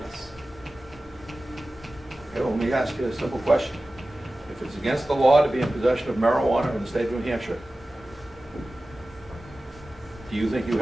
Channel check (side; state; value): both; normal; correlation 0.96